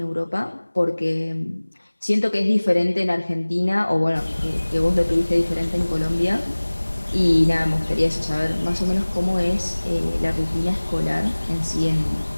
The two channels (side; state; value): both; inverted; correlation -1.00